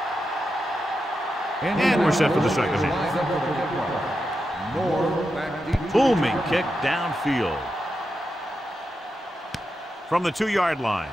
And we're set for the second half. Booming kick downfield. From the 2-yard line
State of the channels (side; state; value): both; normal; correlation 0.88